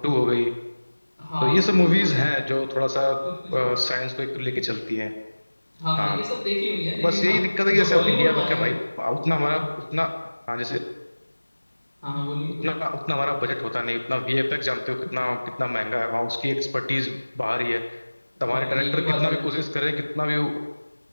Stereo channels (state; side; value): inverted; both; correlation -1.00